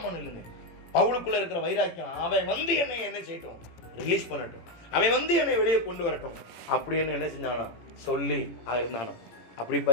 இல்லைங்க, பவுலுக்குள்ள இருக்கிற வைராக்கியம். அவன் வந்து என்னை என்ன செய்யட்டும், ரிலீஸ் பண்ணட்டும், அவன் வந்து என்னை வெளியே கொண்டு வரட்டும் அப்படின்னு என்ன செஞ்சானா சொல்லி இருந்தானோ. அப்படி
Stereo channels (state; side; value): late; right; 18 ms